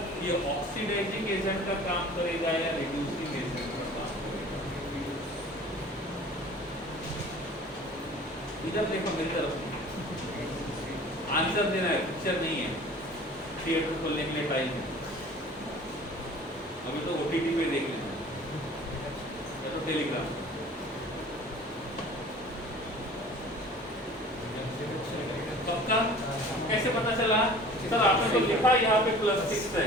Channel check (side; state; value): both; normal; correlation 0.45